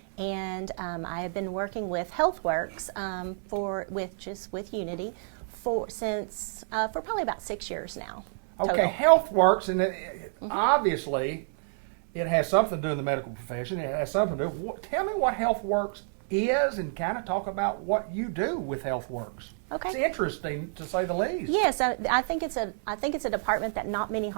And I have been working with HealthWorks with Unity for probably about 6 years now. Okay, HealthWorks, and obviously it has something to do in the medical profession. It has something to do. Tell me what HealthWorks is, and kind of talk about what you do with HealthWorks. Okay. It's interesting, to say the least. Yes, I think it's a department that not many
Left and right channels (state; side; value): silent; left; 59 dB below the other